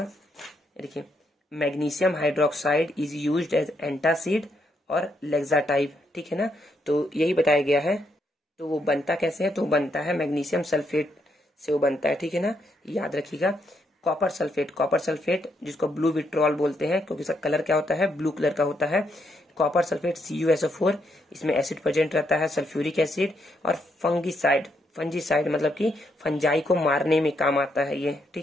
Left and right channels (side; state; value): both; normal; correlation 0.77